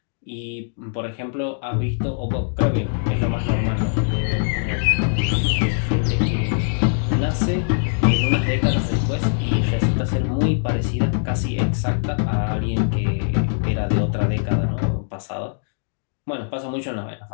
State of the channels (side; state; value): right; silent; digital silence